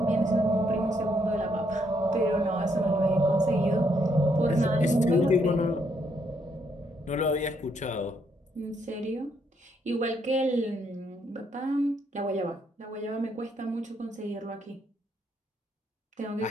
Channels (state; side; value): normal; both; correlation 0.73